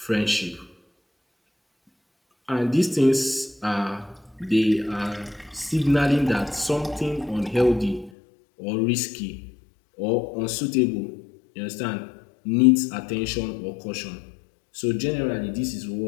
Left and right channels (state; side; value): drops out; right; at 8.1 s